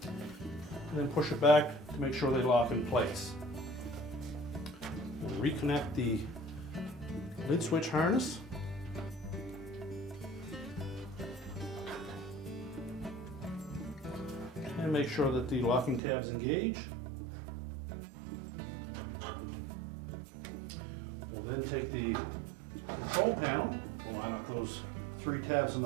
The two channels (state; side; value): drops out; left; at 16.0 s